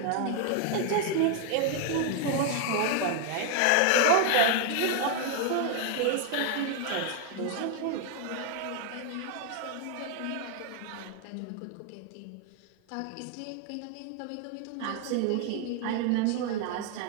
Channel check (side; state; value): both; different; correlation 0.01